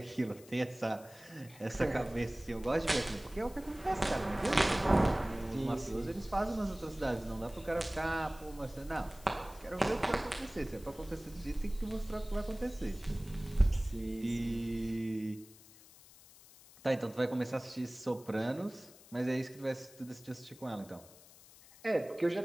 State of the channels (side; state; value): left; noise; hiss, 22 dB below the sound